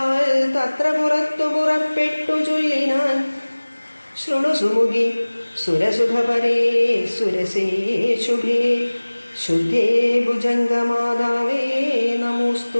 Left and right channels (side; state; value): both; inverted; correlation -1.00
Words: തത്ര പുറത്തു പുറപ്പെട്ടു ചൊല്ലിനാൻ ശൃണു സുമുഖി സുരസുഖപരേ സുരസേ ശുഭേ ശുദ്ധേ ഭുജംഗമാതാവേ